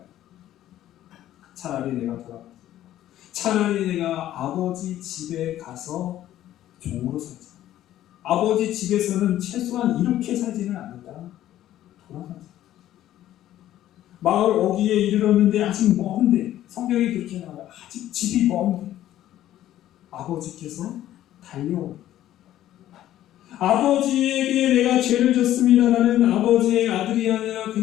차라리 내가 돌아가. 차라리 내가 아버지 집에 가서 종으로 살자. 아버지 집에서는 최소한 이렇게 살지는 않는다. 돌아가자. 마을 어귀에 이르렀는데 아직 먼데, 성경이 그렇게 나와요. 아직 집이 먼데 아버지께서 달려옵니다. 아버지에게 내가 죄를 졌습니다. 나는 아버지의 아들이 아니라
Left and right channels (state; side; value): quieter; right; 12.9 dB